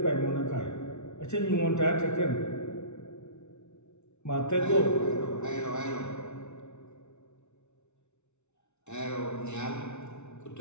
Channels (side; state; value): right; late; 0.82 ms